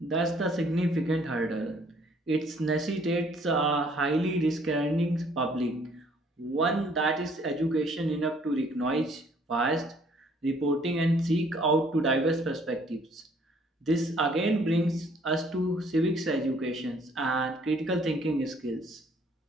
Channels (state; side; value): normal; both; correlation 0.61